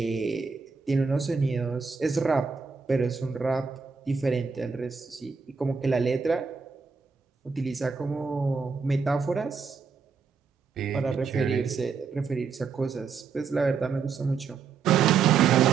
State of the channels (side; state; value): left; quieter; 5.5 dB